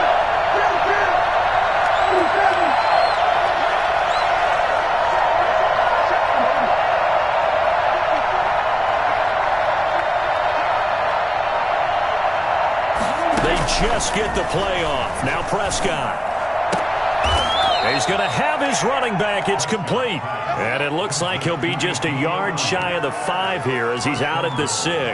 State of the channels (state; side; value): identical; both; correlation 1.00